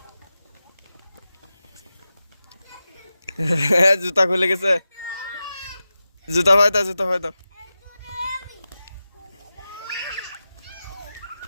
জুতা খুলে গেছে জুতা ভাই দাও জুতা ভাই দাও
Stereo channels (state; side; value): inverted; both; correlation -0.93